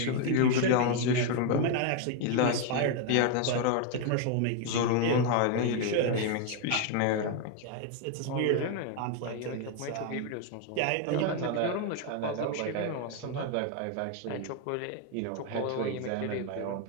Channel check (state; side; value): different; both; correlation 0.01